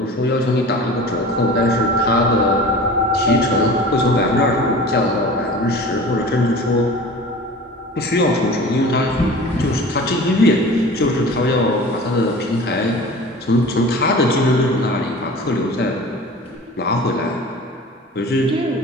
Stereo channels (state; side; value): normal; both; correlation 0.39